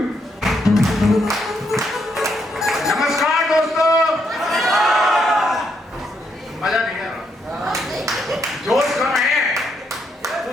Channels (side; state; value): both; normal; correlation 0.77